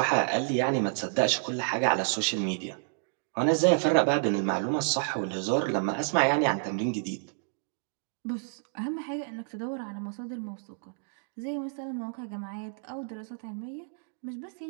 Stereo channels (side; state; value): left; silent; digital silence